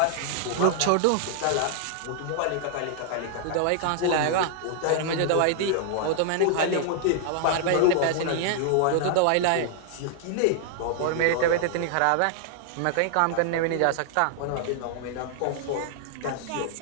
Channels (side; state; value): both; different; correlation 0.00